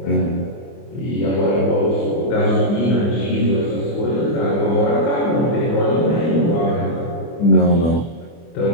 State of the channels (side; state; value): right; late; 24 ms